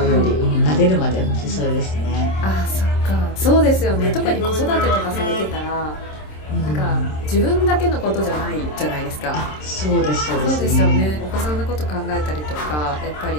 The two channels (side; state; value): right; late; 26 ms